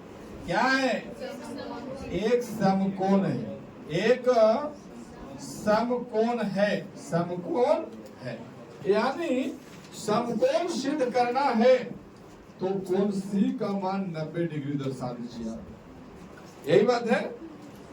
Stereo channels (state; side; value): identical; both; correlation 1.00